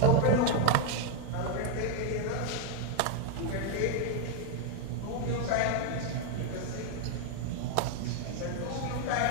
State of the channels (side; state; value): both; different; correlation 0.01